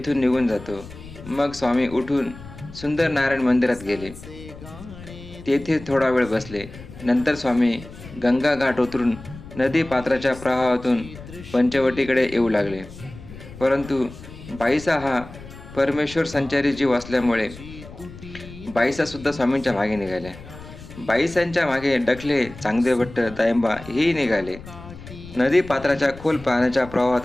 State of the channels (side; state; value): left; noise; rumble, 16 dB below the sound